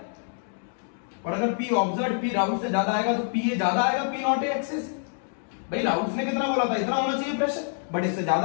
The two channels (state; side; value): silent; right; 56 dB below the other